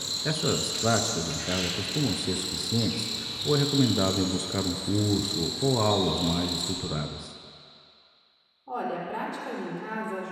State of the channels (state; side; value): identical; both; correlation 1.00